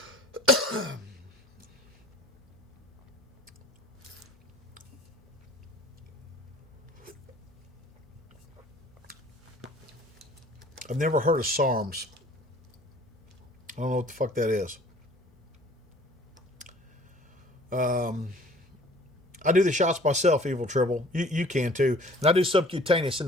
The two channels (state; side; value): normal; both; correlation 0.51